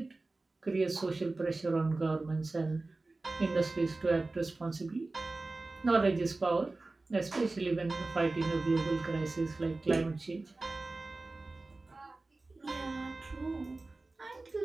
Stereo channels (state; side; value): quieter; left; 3.3 dB